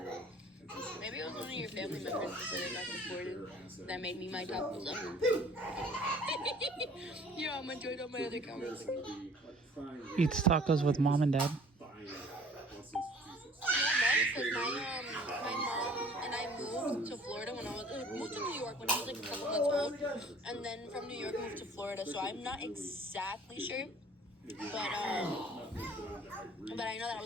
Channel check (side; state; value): both; normal; correlation 0.52